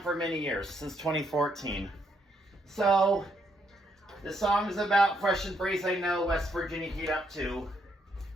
for many years, since 2014. So, the song is about fresh and breeze. I know West Virginia heat up to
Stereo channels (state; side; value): normal; both; correlation 0.74